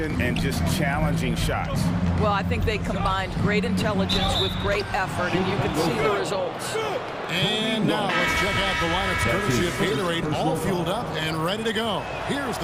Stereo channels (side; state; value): both; identical; correlation 1.00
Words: and just challenging shots. Well, I think they combined great intelligence with great effort, and you can see the results. And now let's check out the lineups courtesy of Gatorade, all fueled up and ready to go. Here's